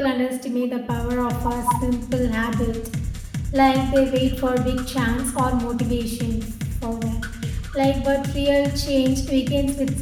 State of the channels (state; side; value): identical; both; correlation 1.00